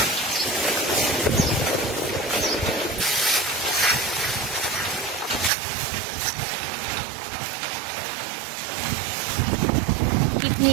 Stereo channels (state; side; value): drops out; left; at 5.5 s